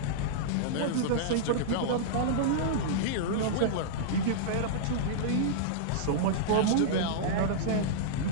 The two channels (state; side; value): different; both; correlation -0.02